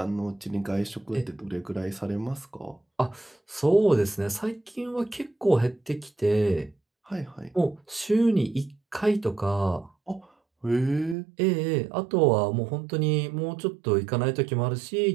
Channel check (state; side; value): drops out; left; at 11.2 s